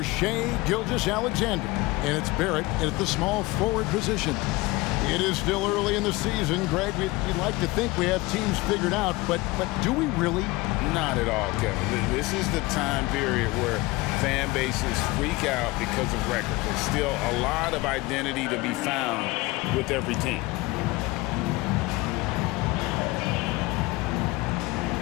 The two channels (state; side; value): quieter; right; 21.6 dB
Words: Shai Gilgeous-Alexander. And it's Barrett at the small forward position. It is still early in the season, Greg. We'd like to think we have teams figured out, but do we really? Not at all, Kevin. This is the time period where fan bases freak out because of record. There's still a lot of identity to be found with every team.